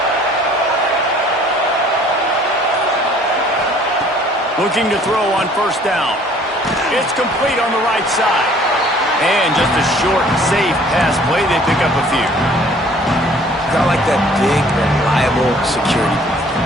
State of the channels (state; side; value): normal; both; correlation 0.55